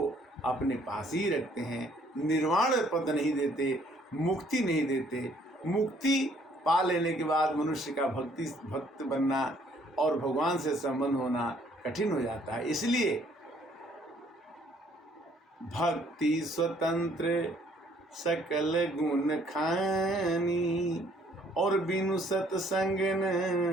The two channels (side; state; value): both; normal; correlation 0.63